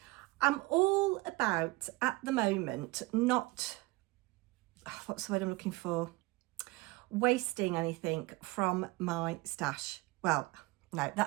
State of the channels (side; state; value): left; quieter; 22.4 dB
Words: all about at the moment not, what's the word I'm looking for, wasting anything from my stash. Well, no,